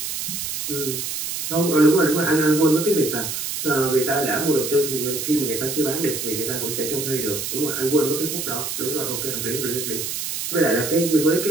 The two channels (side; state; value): right; noise; hiss, 4 dB below the sound